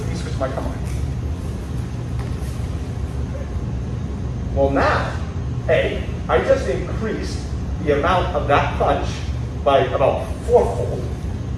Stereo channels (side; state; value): both; identical; correlation 1.00